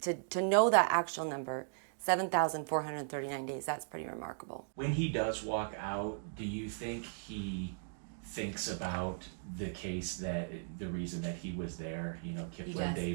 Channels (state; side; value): silent; left; digital silence